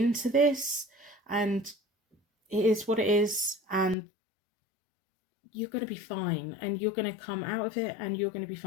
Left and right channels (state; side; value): drops out; right; at 4.0 s